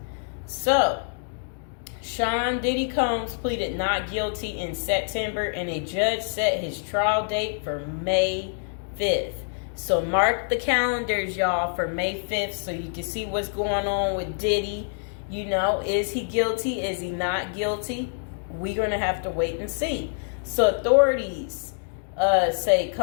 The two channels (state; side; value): silent; right; digital silence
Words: So, Sean Diddy Combs pleaded not guilty in September, and a judge set his trial date for May 5th. So mark the calendars, y'all, for May 5th so you can see what's going on with Diddy. You know, is he guilty? Is he not guilty? We're going to have to wait and see. So authorities say